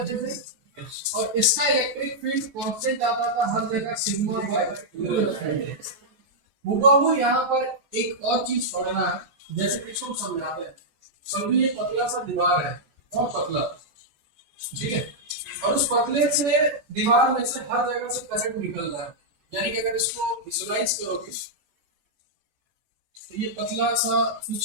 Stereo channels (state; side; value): late; left; 14 ms